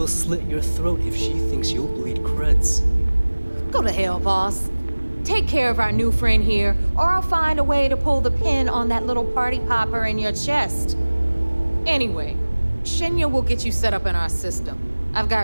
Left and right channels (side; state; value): both; inverted; correlation -1.00